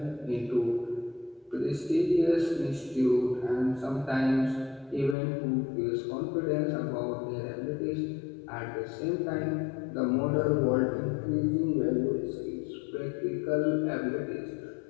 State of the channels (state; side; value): drops out; right; at 5.2 s